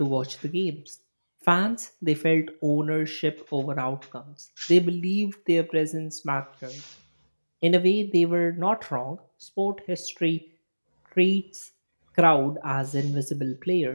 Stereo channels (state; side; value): inverted; both; correlation -1.00